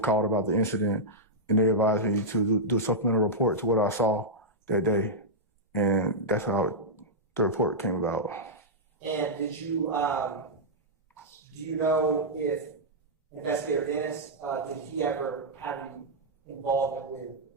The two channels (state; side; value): normal; both; correlation -0.08